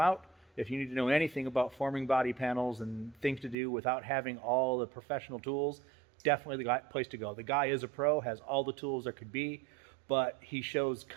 out. If you need to know anything about forming body panels and things to do without having all the professional tools, definitely the place to go. The guy is a pro, has all the tools there could be, but he shows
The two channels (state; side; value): drops out; left; at 3.6 s